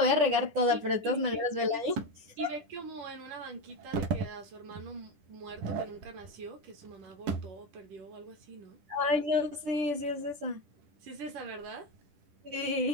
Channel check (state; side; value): late; left; 10 ms